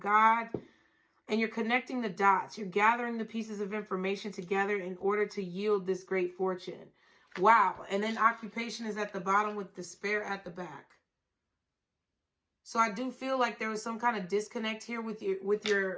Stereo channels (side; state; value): both; identical; correlation 1.00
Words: and you're connecting the dots. You're gathering the pieces of information together in order to yield this great fortune. Wow. And then occupation is at the bottom with despair at the back. So I do feel like there was some kind of disconnect here with